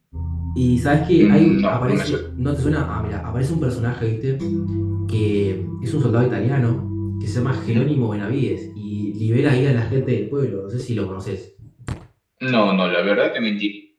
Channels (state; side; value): identical; both; correlation 1.00